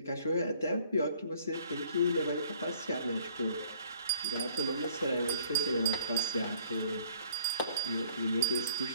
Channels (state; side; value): inverted; both; correlation -0.57